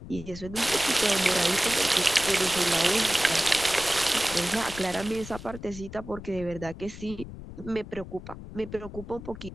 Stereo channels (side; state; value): left; noise; rumble, 13 dB below the sound